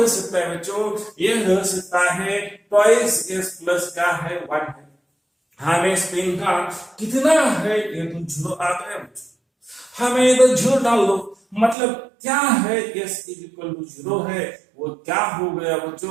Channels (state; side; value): drops out; left; at 11.8 s